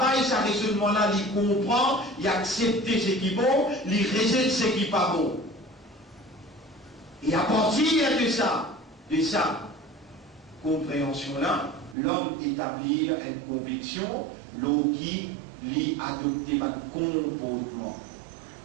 ce raisonnement-là, les comprend, les accepter ce qui est bon, les rejette ce qui n'est pas bon. Et à partir de ça, compréhension-là, l'homme établit une conviction, l'eau qui lui adopter un comportement.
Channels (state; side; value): drops out; left; at 12.0 s